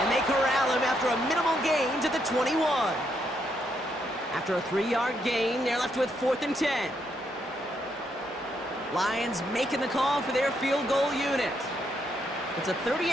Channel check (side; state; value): both; normal; correlation 0.77